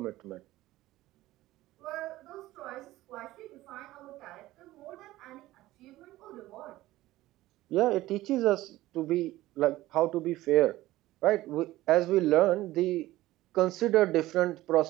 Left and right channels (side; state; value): left; quieter; 16.6 dB